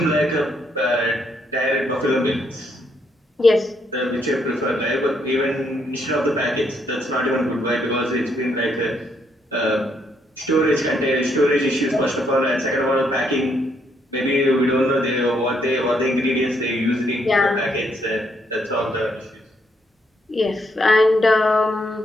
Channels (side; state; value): both; normal; correlation 0.74